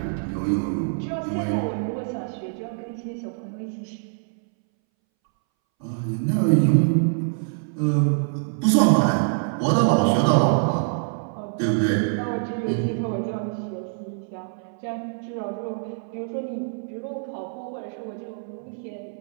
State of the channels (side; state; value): left; silent; 62 dB below the other